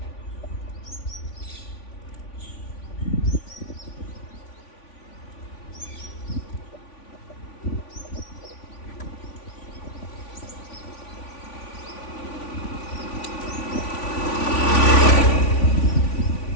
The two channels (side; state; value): right; late; 3.5 ms